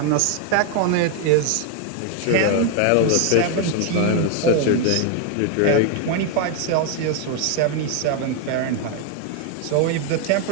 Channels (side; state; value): both; different; correlation 0.01